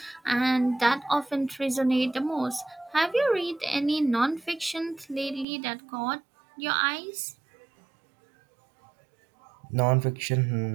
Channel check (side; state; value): left; drops out; at 5.5 s